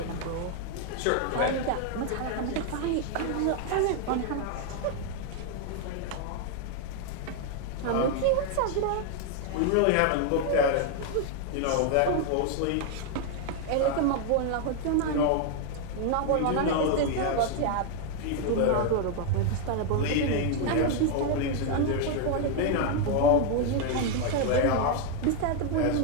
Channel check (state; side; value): different; both; correlation 0.01